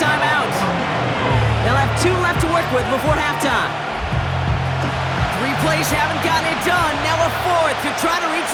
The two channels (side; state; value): both; identical; correlation 1.00